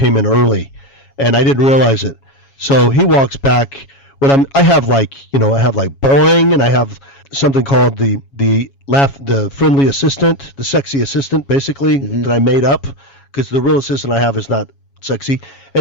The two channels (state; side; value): late; right; 7.2 ms